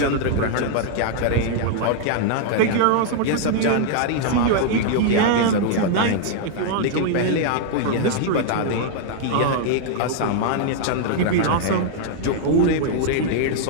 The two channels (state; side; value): different; both; correlation -0.01